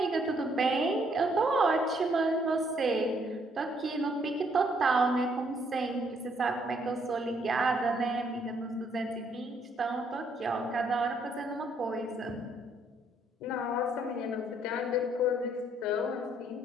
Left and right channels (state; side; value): normal; both; correlation 0.69